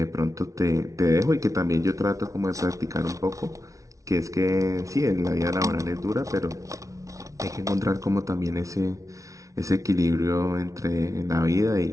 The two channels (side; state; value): left; late; 0.16 ms